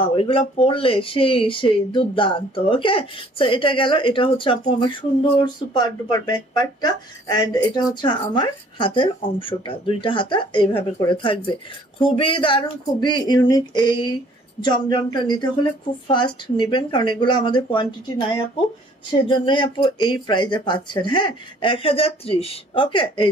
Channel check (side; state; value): both; normal; correlation 0.57